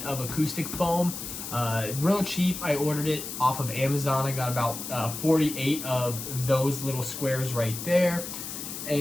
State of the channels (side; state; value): left; noise; hiss, 8 dB below the sound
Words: of acoustic foam. Real cheap. I ordered it off of Amazon. I got about 48 of those little squares right there,